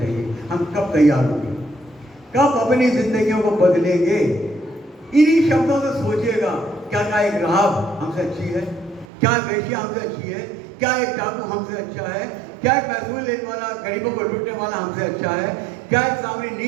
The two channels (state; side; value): drops out; left; at 9.1 s